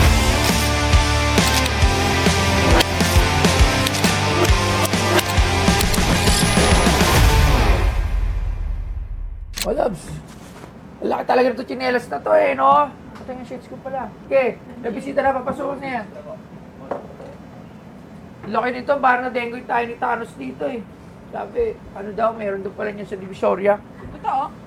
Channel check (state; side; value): identical; both; correlation 1.00